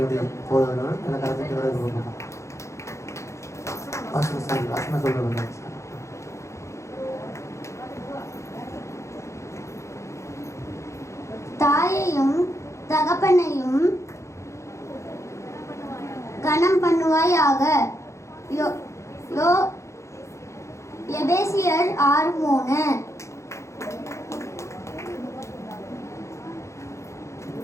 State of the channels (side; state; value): right; late; 0.14 ms